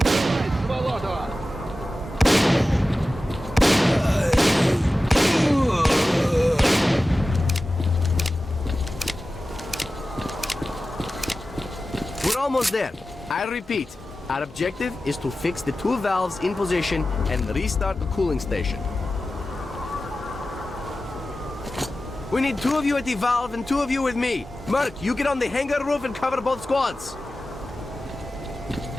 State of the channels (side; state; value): both; normal; correlation 0.94